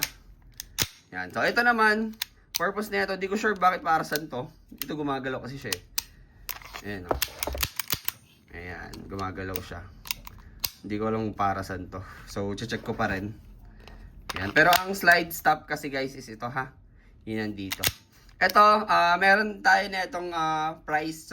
Ayan, so ito naman, purpose na ito, di ko sure bakit para saan to. Ito gumagalaw kasi siya eh. Ayan, no? Ayan, gumagalaw siya. Hindi ko alam para saan to. So, check ko pa rin. Ayan, pero ang slide stop kasi guys is ito ha. Yun nandito. Ito, meron tayo na itong price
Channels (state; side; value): identical; both; correlation 1.00